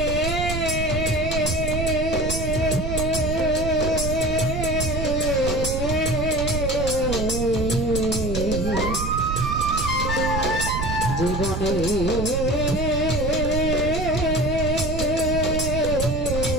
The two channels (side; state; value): right; noise; rumble, 3 dB below the sound